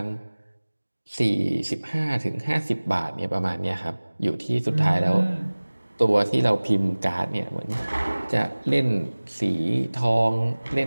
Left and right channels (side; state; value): both; inverted; correlation -1.00